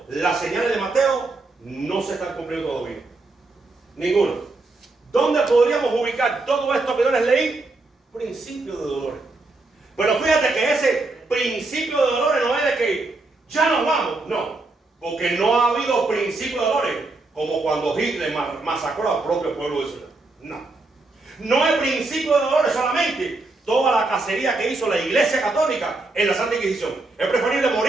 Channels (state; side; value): quieter; left; 3.2 dB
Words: las señales de Mateo no se están cumpliendo todavía. Ninguno. ¿Dónde podríamos ubicar todo esto que yo les leí? Principio de dolores. Pero fíjate que ese principio de dolores no es de que ya nos vamos, no, porque no ha habido principio de dolores como cuando Hitler masacró al propio pueblo de Israel. No es principio de dolores solamente toda la cacería que hizo la Iglesia Católica en la Santa Inquisición. Es preferible